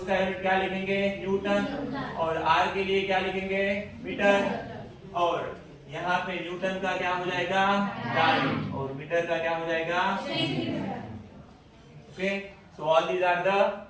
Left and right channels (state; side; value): identical; both; correlation 1.00